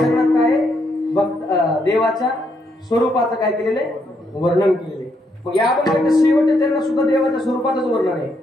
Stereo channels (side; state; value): both; normal; correlation 0.76